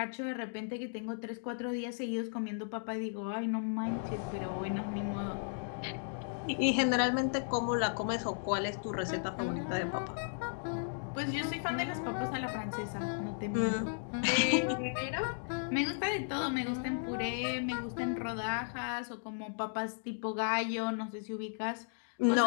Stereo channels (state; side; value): silent; right; digital silence